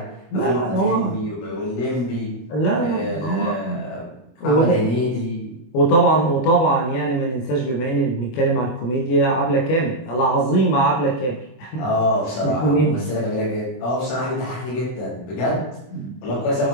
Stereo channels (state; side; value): late; right; 24 ms